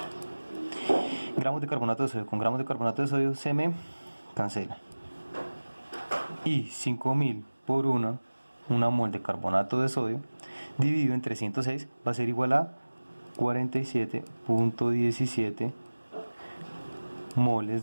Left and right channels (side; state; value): both; inverted; correlation -1.00